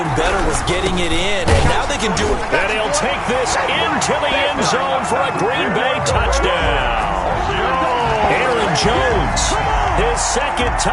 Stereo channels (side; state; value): both; identical; correlation 1.00